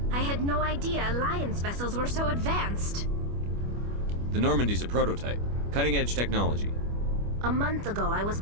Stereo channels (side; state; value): left; late; 25 ms